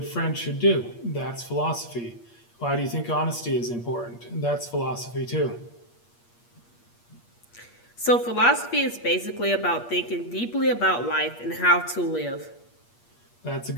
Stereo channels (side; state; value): right; late; 8.5 ms